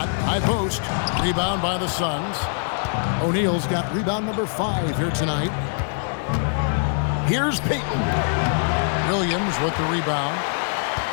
high post. Rebound by the Suns. O'Neal's got rebound number 5 here tonight. Here's Payton. Williams with the rebound.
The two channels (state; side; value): silent; right; digital silence